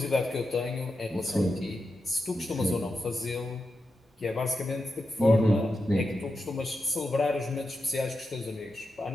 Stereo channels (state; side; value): normal; both; correlation 0.88